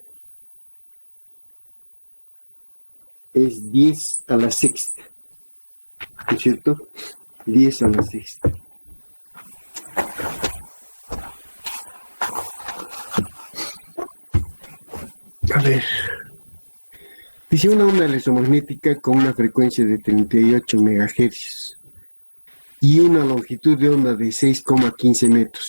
es 10 a la sexta, ¿es cierto? 10 a la sexta. A ver, dice una onda electromagnética con una frecuencia de 38 MHz y una longitud de onda de 6,15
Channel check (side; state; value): both; inverted; correlation -1.00